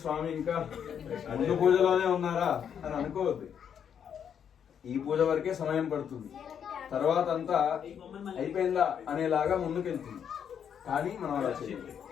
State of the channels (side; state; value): right; quieter; 8.2 dB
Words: స్వామి ఇంకా ముందు పూజలోనే ఉన్నారా అని అనుకోవద్దు. ఈ పూజ వరకే సమయం పడుతుంది, తర్వాత అంతా అయిపోయిందా అనేలాగా ముందుకెళ్తుంది. కానీ మనం అలా చేయాలి.